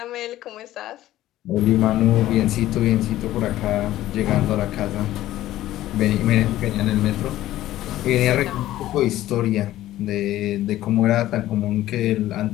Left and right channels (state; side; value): quieter; right; 14.5 dB